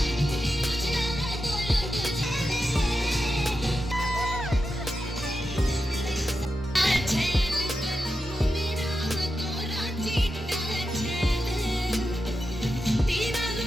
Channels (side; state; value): both; normal; correlation 0.89